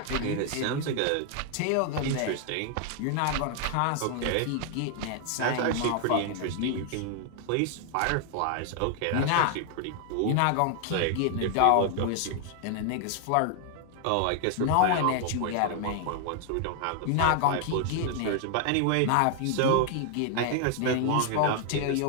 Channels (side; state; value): both; different; correlation 0.00